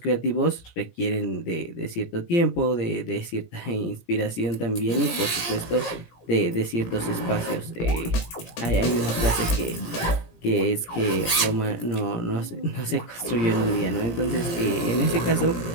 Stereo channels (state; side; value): late; right; 17 ms